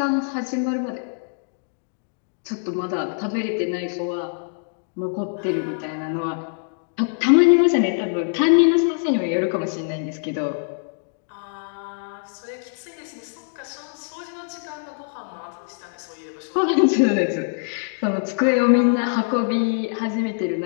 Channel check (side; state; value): right; silent; digital silence